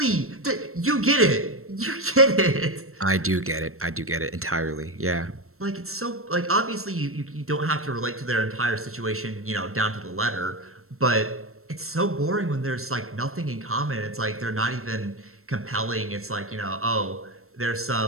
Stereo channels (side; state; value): left; late; 0.63 ms